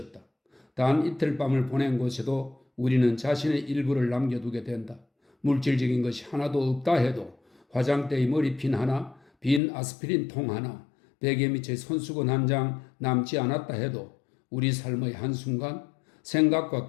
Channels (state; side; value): drops out; right; at 9.6 s